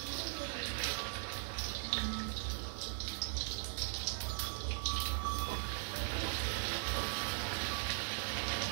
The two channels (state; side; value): silent; left; 51 dB below the other